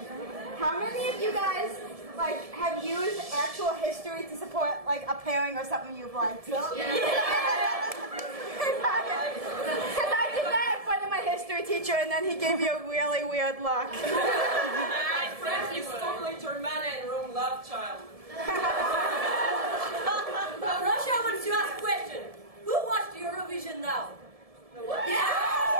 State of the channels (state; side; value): late; left; 1.7 ms